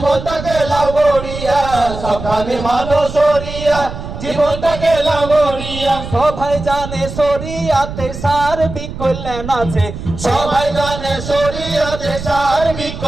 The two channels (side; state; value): right; noise; rumble, 9 dB below the sound